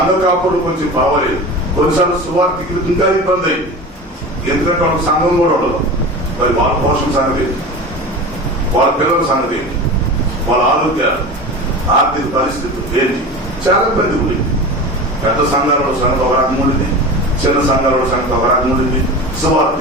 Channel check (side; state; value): both; normal; correlation 0.31